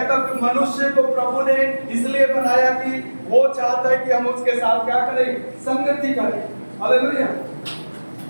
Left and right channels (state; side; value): inverted; both; correlation -1.00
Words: हूं कि मनुष्य को प्रभु ने इसलिए बनाया कि वो चाहता है कि हम उसके साथ क्या करें, संगति करें। हालेलुया।